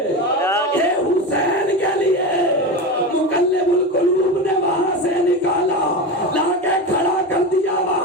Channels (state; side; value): normal; both; correlation 0.22